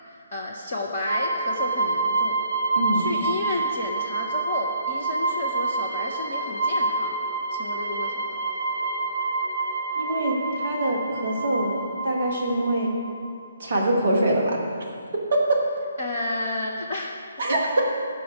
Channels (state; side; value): inverted; both; correlation -0.67